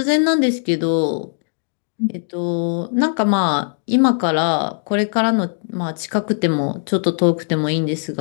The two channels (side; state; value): right; silent; digital silence